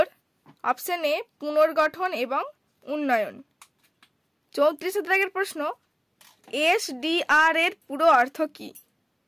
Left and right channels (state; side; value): identical; both; correlation 1.00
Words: অপশন এ পুনর্গঠন এবং উন্নয়ন। 34 দাগের প্রশ্ন, এসডিআর এর পুরো অর্থ কি?